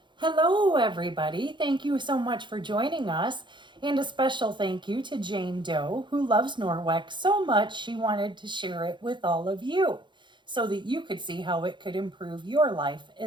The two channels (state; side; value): late; left; 0.23 ms